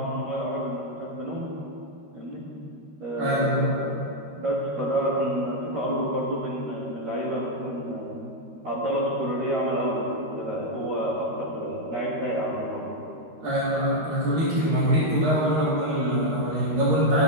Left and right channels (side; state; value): left; late; 13 ms